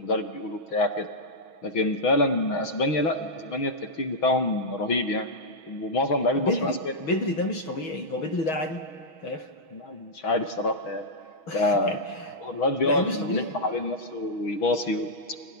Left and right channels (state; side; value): late; right; 6.3 ms